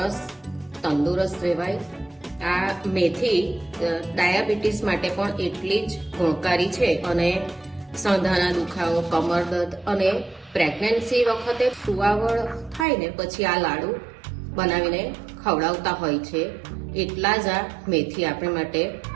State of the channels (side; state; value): left; drops out; at 12.9 s